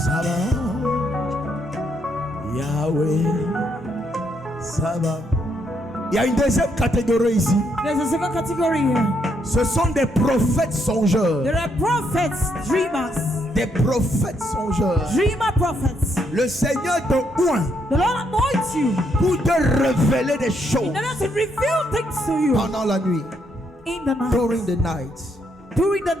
Yahweh Sabaoth. Il y a une deuxième catégorie ici. There's a second category here. Ce sont des prophètes songeurs. There are prophets, dreamers. Des prophètes songeurs. Dreamer prophets. Le Seigneur te oint The Lord anoints you pour te révéler des choses in order to reveal things to you pendant la nuit. in the night. During the night. During the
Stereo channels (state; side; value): normal; both; correlation 0.75